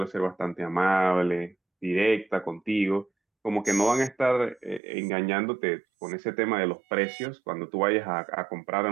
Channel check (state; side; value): drops out; left; at 4.8 s